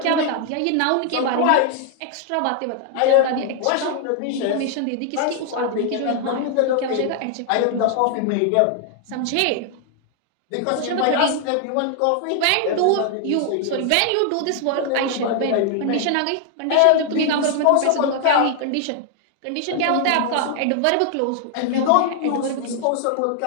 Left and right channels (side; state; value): both; different; correlation 0.00